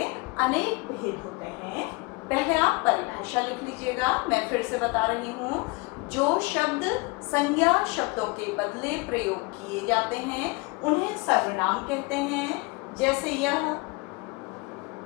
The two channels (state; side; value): quieter; right; 26.8 dB